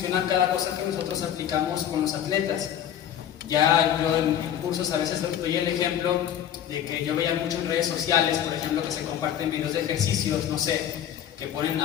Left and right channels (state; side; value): quieter; right; 10.1 dB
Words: cada cosa que nosotros aplicamos con los atletas. Ya yo en cursos a veces doy el ejemplo de que yo veía mucho en redes sociales, por ejemplo, que se comparten videos de ejercicios, no sé, que ponen